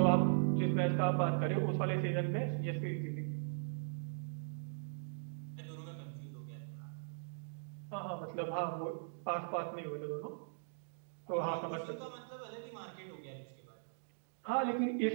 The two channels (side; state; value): left; silent; digital silence